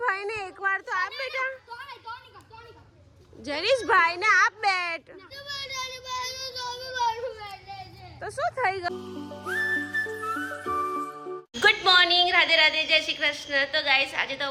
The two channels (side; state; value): both; identical; correlation 1.00